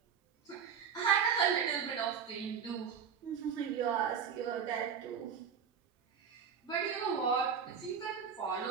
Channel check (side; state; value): left; quieter; 7.1 dB